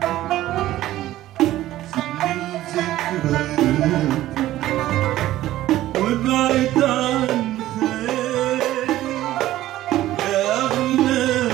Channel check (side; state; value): left; quieter; 14.6 dB